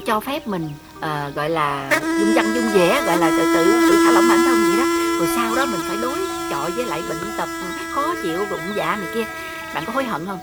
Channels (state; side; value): identical; both; correlation 1.00